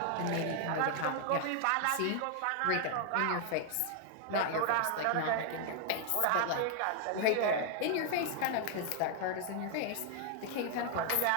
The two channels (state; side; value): different; both; correlation 0.00